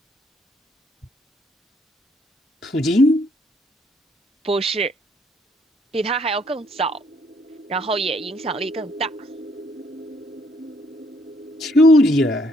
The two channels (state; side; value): normal; both; correlation 0.68